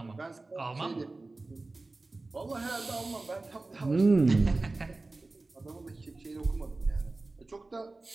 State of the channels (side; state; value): left; quieter; 3.3 dB